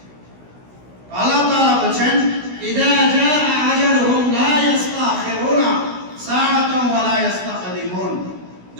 আল্লাহ তাআলা ইযা জাআ আজালুহুম লা ইস্তাখিরুনা সাআতান ওয়া লা ইস্তাকদিমুন।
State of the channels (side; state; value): left; late; 16 ms